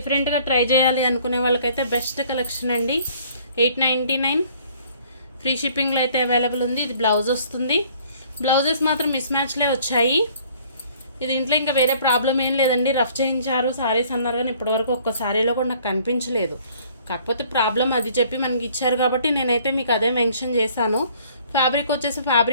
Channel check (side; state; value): both; inverted; correlation -0.57